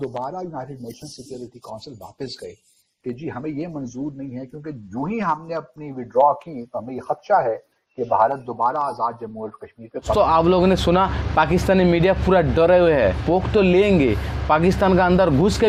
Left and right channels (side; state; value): both; identical; correlation 1.00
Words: یونائٹڈ نیشن سیکیورٹی کونسل واپس گئے کہ جی ہمیں یہ منظور نہیں ہے, کیونکہ جو ہی ہم نے اپنی وڈرا کی تو ہمیں یہ خدشہ ہے کہ بھارت دوبارہ آزاد جموں اور کشمیر کے. تو آپ لوگوں نے سنا پاکستانی میڈیا پورا ڈرے ہوئے ہے, پوک تو لیں گے, پاکستان کا اندر گھس